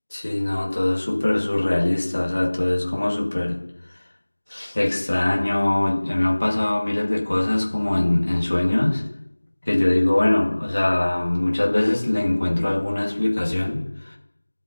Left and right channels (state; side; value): inverted; both; correlation -1.00